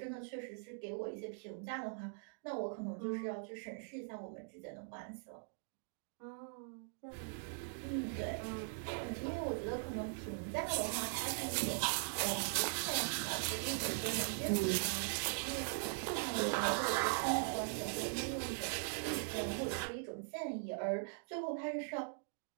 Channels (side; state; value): left; silent; digital silence